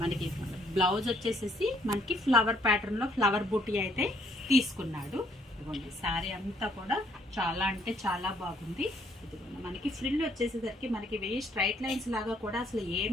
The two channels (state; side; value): normal; both; correlation 0.67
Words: మనకి బ్లౌజ్ వచ్చేసేసి మనకి ఫ్లవర్ ప్యాటర్న్లో ఫ్లవర్ బూటీ అయితే తీసుకున్నాడు. ఇదిగోండి శారీ అంతా కూడా చాలా అంటే చాలా బాగుంది. ఇదిగోండి మనకి ఫ్రిల్ వచ్చేసేసరికి మనకి వెయ్యి స్ట్రైట్ లైన్స్ లాగా కూడా అసలు